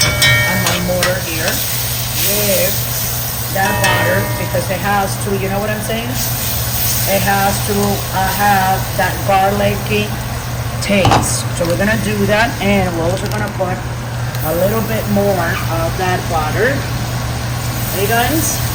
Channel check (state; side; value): identical; both; correlation 1.00